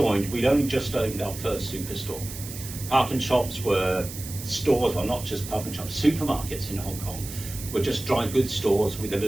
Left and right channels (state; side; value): noise; right; hiss, 11 dB below the sound